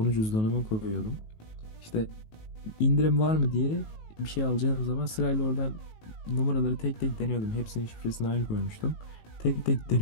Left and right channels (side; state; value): right; late; 19 ms